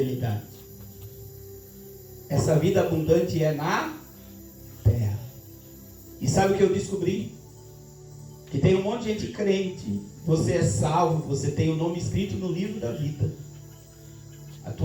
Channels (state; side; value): identical; both; correlation 1.00